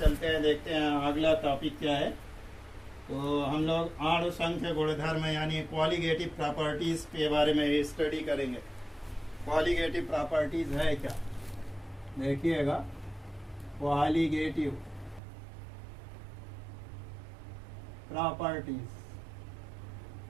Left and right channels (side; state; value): left; drops out; at 15.2 s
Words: हैं। देखते हैं अगला टॉपिक क्या है। तो हम लोग अणु संख्य गुणधर्म यानी क्वालिटेटिव प्रॉपर्टीज के बारे में स्टडी करेंगे। क्वालिटेटिव प्रॉपर्टीज है क्या, देखिएगा। क्वालिटेटिव प्रॉपर्टीज